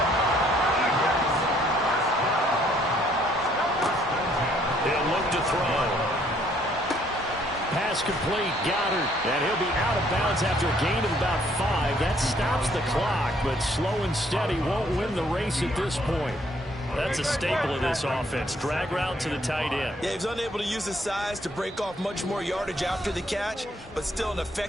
He'll look to throw. Pass complete, Goddard, and he'll be out of bounds after a gain of about 5. That stops the clock, but slow and steady won't win the race at this point. That's a staple of this offense. Drag route to the tight end. Yeah, he was unable to use his size to break off much more yardage after the catch, but still an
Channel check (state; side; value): normal; both; correlation 0.65